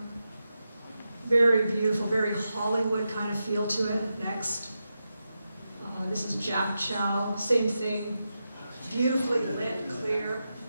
Very beautiful, very Hollywood kind of feel to it. Next. This is Jack Chow, same thing. Beautifully lit, clear.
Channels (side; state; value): both; inverted; correlation -0.89